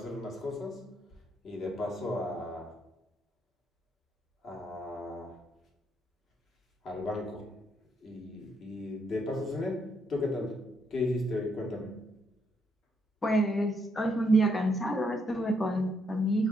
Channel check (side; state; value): both; normal; correlation 0.75